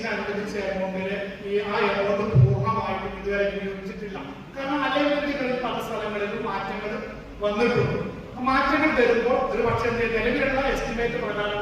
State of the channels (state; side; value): identical; both; correlation 1.00